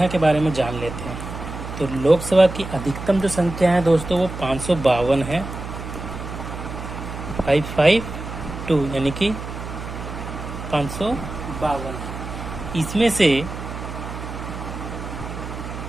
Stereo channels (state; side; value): noise; right; hum, 9 dB below the sound